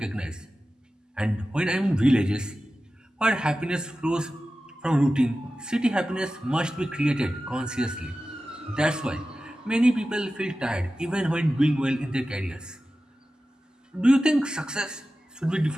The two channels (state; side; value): normal; both; correlation 0.94